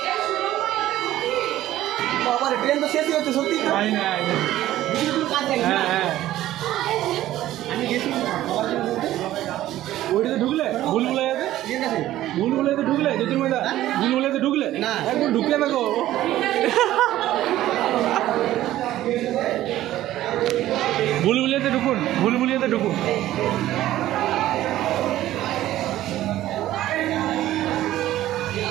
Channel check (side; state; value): left; quieter; 14.2 dB